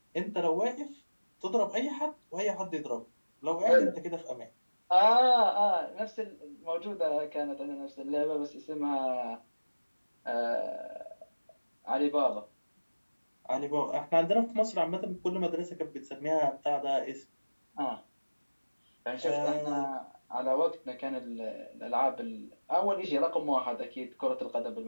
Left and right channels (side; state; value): both; inverted; correlation -1.00